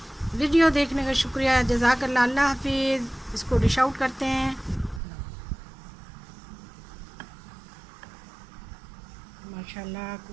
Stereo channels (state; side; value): drops out; left; at 5.0 s